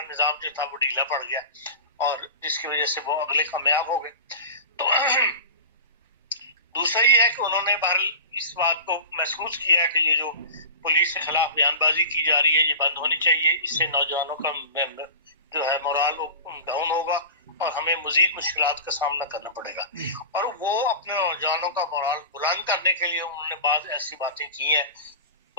نظام جو تھا وہ ڈھیلا پڑ گیا اور جس کی وجہ سے وہ اگلے کامیاب ہو گئے. تو دوسرا یہ ہے کہ انہوں نے بہرحال اس بات کو محسوس کیا کہ یہ جو پولیس کے خلاف بیان بازی کی جا رہی ہے یہ بند ہونی چاہیے، اس سے نوجوانوں کا جو ہے مورال ڈاؤن ہوگا اور ہمیں مزید مشکلات کا سامنا کرنا پڑے گا. اور وہ اپنے نوجوانوں کا مورال بلند کرنے کے لیے انہوں نے بعض ایسی باتیں کی ہیں،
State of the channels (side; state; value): both; inverted; correlation -0.32